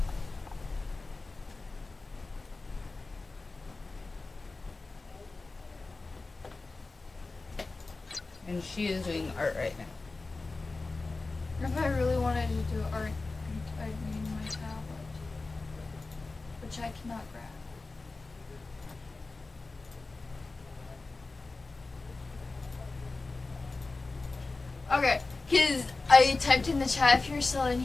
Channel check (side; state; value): right; quieter; 3.6 dB